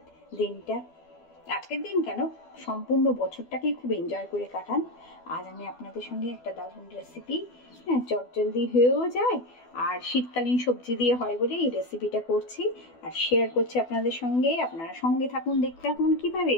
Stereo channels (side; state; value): right; late; 12 ms